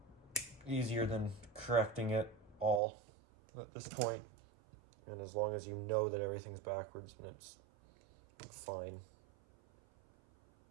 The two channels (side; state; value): left; drops out; at 2.8 s